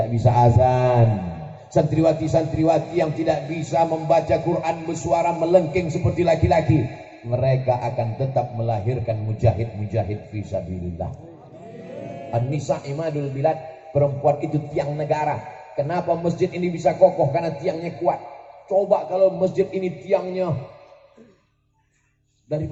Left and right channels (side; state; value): both; identical; correlation 1.00